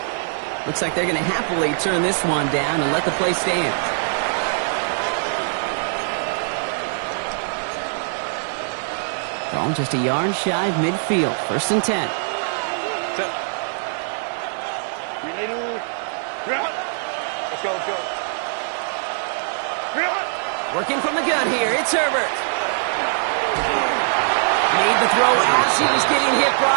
Looks like they're going to happily turn this one down and let the play stand. Ball just a yard shy of midfield. 1st and 10. Let's go, let's go. Working from the gun here, it's Herbert. Made the throw as he was getting hit,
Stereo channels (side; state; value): left; silent; digital silence